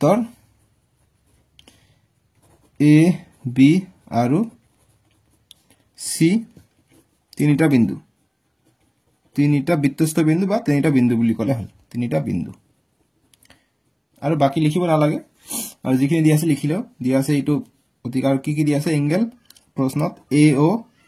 এ বি আৰু সি তিনিটা বৃত্তস্থ বিন্দু বা তিনিটা বিন্দু বুলি কলে হল তিনিটা বিন্দু আৰু বাকি লিখিব নালাগে আৰু যিখিনি দি আছে লিখিলো দি আছে এইটো অধিকাৰ কি দি আছে এংগল প্ৰশ্নত এ ও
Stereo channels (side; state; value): both; identical; correlation 1.00